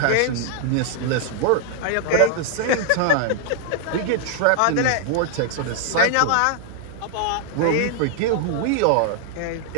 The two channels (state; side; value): different; both; correlation 0.00